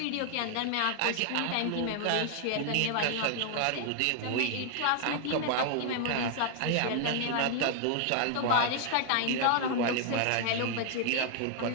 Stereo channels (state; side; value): different; both; correlation 0.00